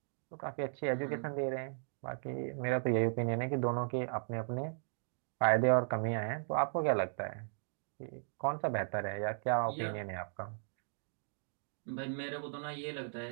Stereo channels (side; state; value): left; silent; digital silence